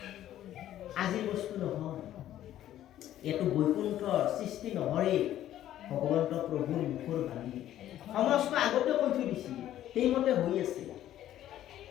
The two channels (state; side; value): quieter; right; 12.4 dB